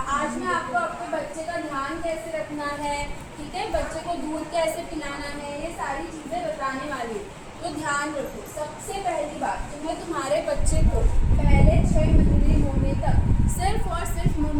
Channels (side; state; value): both; identical; correlation 1.00